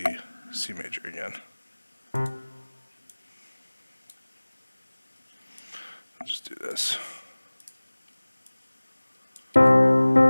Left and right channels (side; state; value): both; inverted; correlation -1.00